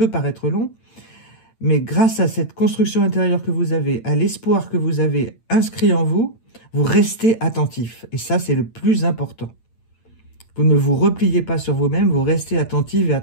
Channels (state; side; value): late; right; 8.9 ms